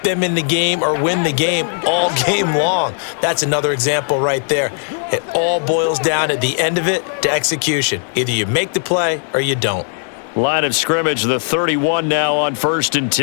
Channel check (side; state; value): right; silent; 57 dB below the other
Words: them in the game or win the game all game long. That's another example right there. It all boils down at the end of it to execution. Either you make the play or you don't. Line of scrimmage, the 31 now on 1st and